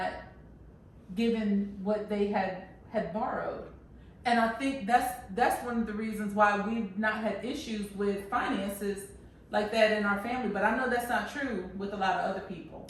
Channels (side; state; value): both; identical; correlation 1.00